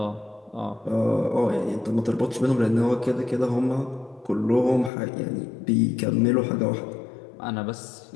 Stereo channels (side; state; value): right; drops out; at 4.9 s